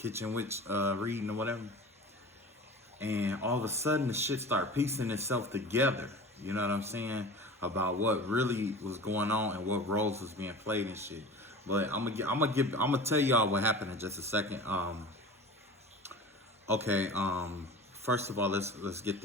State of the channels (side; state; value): both; normal; correlation 0.36